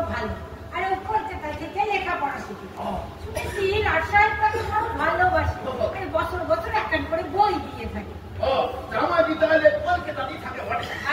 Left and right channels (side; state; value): both; identical; correlation 1.00